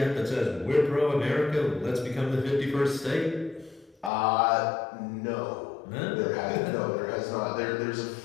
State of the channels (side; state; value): right; drops out; at 4.1 s